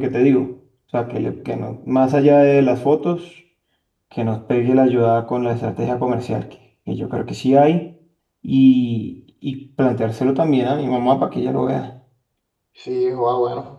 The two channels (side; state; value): both; identical; correlation 1.00